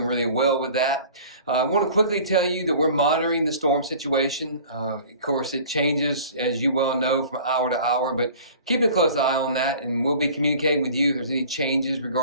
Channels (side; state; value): both; inverted; correlation -0.45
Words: really well with that. I want to quickly tell you that we're monitoring the storm situation. Of course, it changes, as you well know, from hour to hour, but keep a close eye on that, and we'll be communicating with you if there's any changes